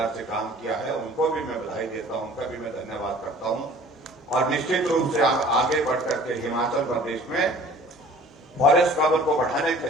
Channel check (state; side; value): normal; both; correlation 0.49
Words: से काम किया है, उनको भी मैं बधाई देता हूं, उनका भी मैं धन्यवाद करता हूं। और निश्चित रूप से आगे बढ़कर के हिमाचल प्रदेश में फॉरेस्ट कवर को बढ़ाने